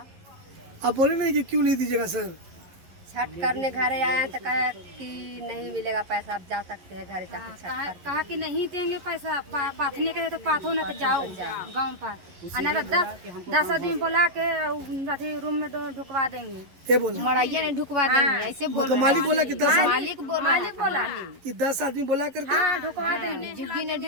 आप बोले नहीं कि क्यों नहीं दीजिएगा सर? छठ करने घर आया तो कहा कि नहीं मिलेगा पैसा, आप जा सकते हैं घर जाके छठ कर। कहा कि नहीं देंगे पैसा, पाथने के तो पाथो ना तो जाओ गाँव पर, ना तो 10 आदमी बुला के अथी रूम में ढुकवा देंगे। क्या बोला? मड़ैया ने ढुकवा देंगे ऐसे बोल तो मालिक बोला कि 10 मालिक बोला कि 10 आदमी बोला करके हाँ ढुकवा देंगे, झुग्गी ने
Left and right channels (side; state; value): left; late; 11 ms